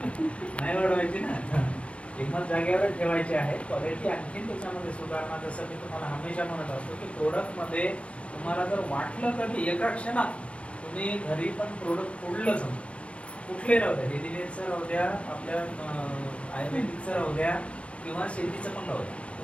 नाही वाढवायची ना, किंमत जागेवर ठेवायची आहे. क्वालिटी आणखी त्याच्यामध्ये सुधारणा, जसं मी तुम्हाला हमेशा म्हणत असतो की प्रोडक्टमध्ये तुम्हाला जर वाटलं कधी एका क्षणात तुम्ही घरी पण प्रोडक्ट फोडलं समजा, कुठले राहू द्या, डेलीवेअरचं राहू द्या, आपल्या आयुर्वेदिकचं राहू द्या किंवा शेतीचं पण राहू द्या,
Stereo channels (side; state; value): right; late; 0.062 ms